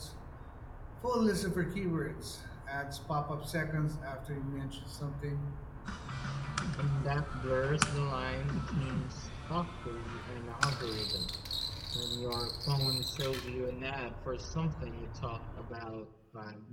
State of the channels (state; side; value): identical; both; correlation 1.00